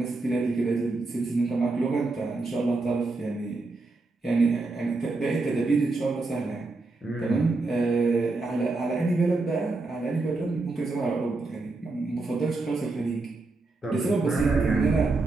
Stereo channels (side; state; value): left; quieter; 3.4 dB